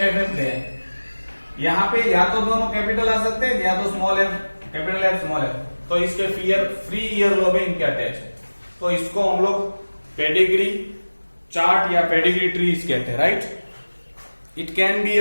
एफ गया, यहाँ पे या तो दोनों कैपिटल आ सकते हैं या तो small F capital F small F, तो इसके फ्री ईयरलोब है, इनके अटैच है। तो इसको हम लोग पेडिग्री चार्ट या पेडिग्री ट्रीज कहते हैं, राइट। इट कैन बी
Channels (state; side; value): inverted; both; correlation -1.00